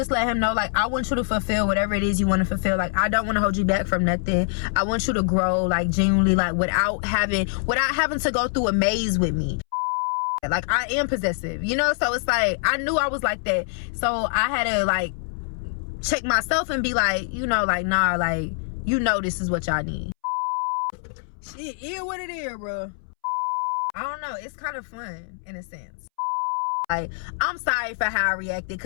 let him know, like, I want you to fulfill whatever it is you want to fulfill. Like, I don't want to hold you back from nothing. I want you to grow, like, genuinely, like, without having to go through a maze with me. Like, I am possessive, you know? So it's like, I knew I was like that. So I had to, like, check myself and be like, you know, like, nah, like, you know this is what y'all need. Shit is what it is, bro. I don't know. It's kind of fun, in a sense. Like, I'm sorry for how I reacted,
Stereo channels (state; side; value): silent; right; 62 dB below the other